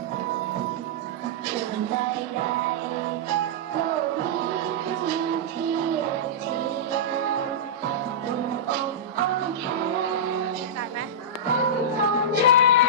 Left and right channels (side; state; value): both; normal; correlation -0.14